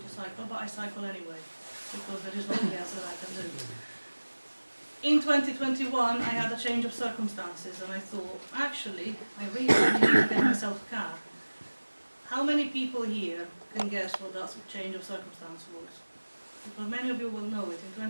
cycle, but I cycle anyway, because there is nothing else that I can do. In 2021 I had a change of circumstances and I thought, actually, I really need to get myself a car. How many people here can guess what that change of circumstance was? Because many of you will know it. In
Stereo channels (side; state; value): both; inverted; correlation -1.00